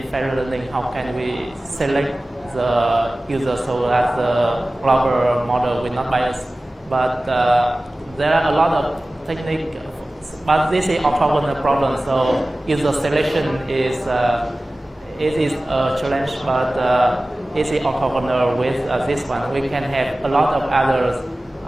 federated learning. How can we select the user so that the global model will not bias? But there are a lot of techniques, but this is orthogonal problem. So user selection is it is a challenge, but it is orthogonal with this one. We can have a lot of other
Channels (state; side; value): normal; both; correlation 0.97